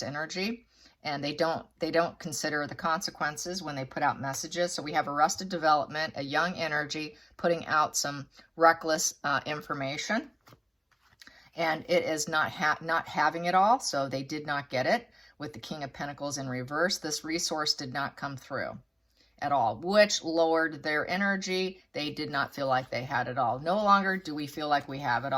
energy, and they don't consider the consequences when they put out messages. So we have arrested development, a young energy putting out some reckless information, and it is not having it all. So they did not get it with the King of Pentacles in reverse. This resource did not come through at all, which lowered their energy. They did not feel like they had it all. No longer do we feel like we have it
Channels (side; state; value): both; identical; correlation 1.00